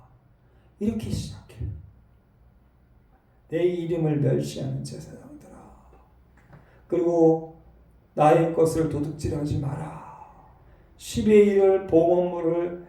이렇게 시작해요. 내 이름을 멸시하는 제사장들아, 그리고 나의 것을 도둑질하지 마라. 10의 1을 봉헌물을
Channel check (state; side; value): identical; both; correlation 1.00